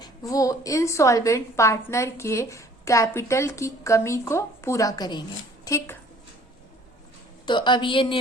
वो इंसॉल्वेंट पार्टनर के कैपिटल की कमी को पूरा करेंगे, ठीक। तो अब ये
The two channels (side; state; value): both; normal; correlation 0.55